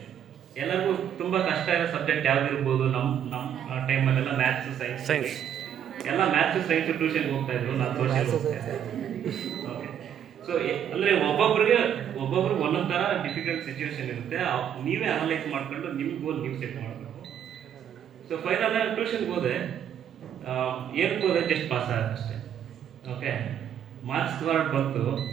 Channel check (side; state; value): left; quieter; 9.4 dB